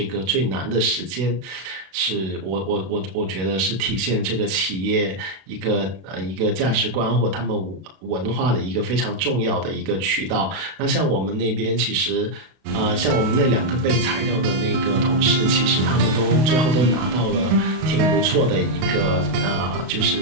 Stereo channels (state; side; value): late; left; 32 ms